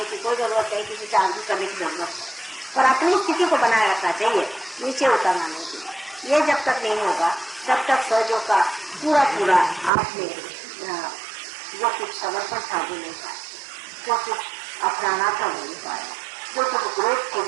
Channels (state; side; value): drops out; left; at 9.9 s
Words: की कोई जरूरत नहीं, किसी से आर्ग्यू करने की जरूरत नहीं, पर अपनी स्थिति को बनाए रखना चाहिए, नीचे उतरना नहीं चाहिए। ये जब तक नहीं होगा तब तक सहयोग का पूरा पूरा आपने जो कुछ समर्पण था वो नहीं पाए, जो कुछ अपनाना था वो नहीं पाया, जो कुछ ग्रोथ थे